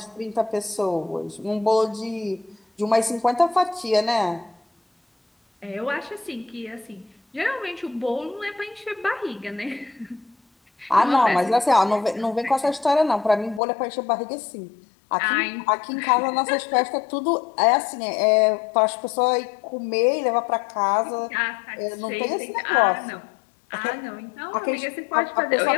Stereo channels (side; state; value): right; drops out; at 13.6 s